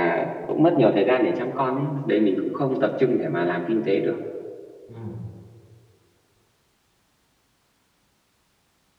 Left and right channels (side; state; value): both; identical; correlation 1.00